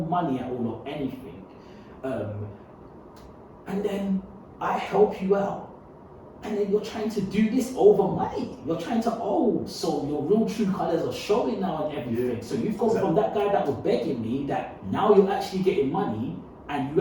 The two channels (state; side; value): identical; both; correlation 1.00